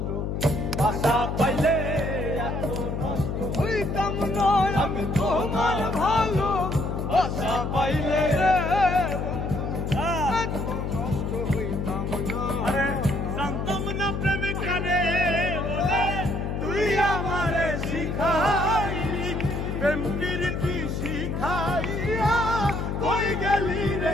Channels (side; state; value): left; noise; hum, 2 dB below the sound